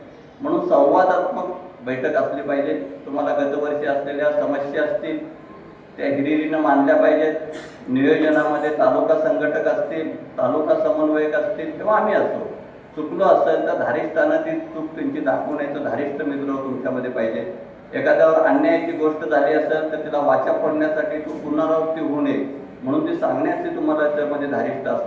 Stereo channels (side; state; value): both; identical; correlation 1.00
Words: म्हणून संवादात्मक बैठक असली पाहिजे। तुम्हाला गतवर्षी असलेल्या समस्या असतील त्या हिरिरीनं मांडल्या पाहिजेत। नियोजनामध्ये तालुका संघटक असतील, तालुका समन्वयक असतील किंवा आम्ही असतो, चुकलो असेल तर धारिष्ठानं चूक त्यांची दाखवून यायचं धारिष्ठ मित्र तुमच्यामध्ये पाहिजे। एखाद्यावर अन्यायाची गोष्ट झाली असेल तर तिला वाचा फोडण्यासाठी तू पुनरावृत्ती होऊ नये म्हणून ते सांगण्याचे तुम्हाला त्यामध्ये धारिष्ठ